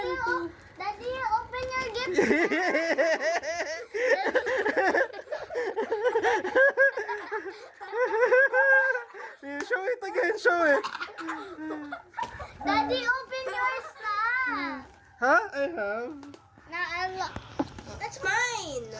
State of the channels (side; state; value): both; identical; correlation 1.00